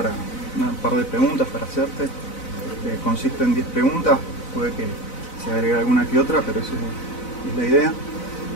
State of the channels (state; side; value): late; right; 4.0 ms